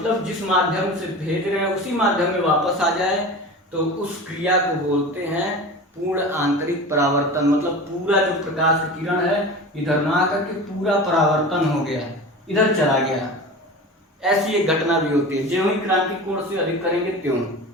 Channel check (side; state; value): both; normal; correlation 0.32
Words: जिस माध्यम से भेज रहे हैं उसी माध्यम में वापस आ जाए, तो उस क्रिया को बोलते हैं पूर्ण आंतरिक परावर्तन। मतलब पूरा जो प्रकाश का किरण है इधर ना आकर के पूरा परावर्तन हो गया, इधर चला गया। ऐसी एक घटना भी होती है, ज्यों ही क्रांतिक कोण से अधिक करेंगे त्यों।